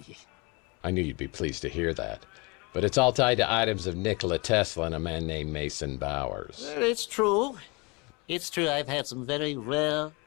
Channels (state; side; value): quieter; right; 28.2 dB